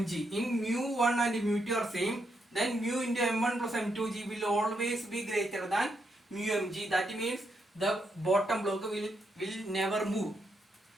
in mu1 and mu2 are same, then mu into m1 plus m2g will always be greater than mu mg. That means the bottom block will never move.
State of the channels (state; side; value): normal; both; correlation 0.80